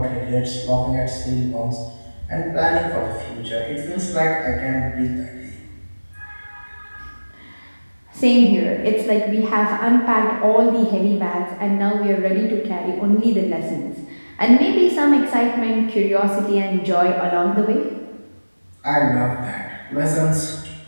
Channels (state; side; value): inverted; both; correlation -1.00